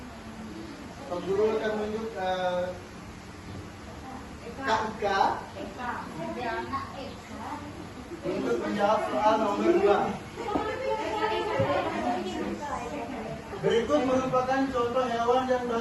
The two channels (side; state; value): both; identical; correlation 1.00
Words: Pak Guru akan menunjuk Kak Ika untuk menjawab soal nomor 2. Berikut merupakan contoh hewan yang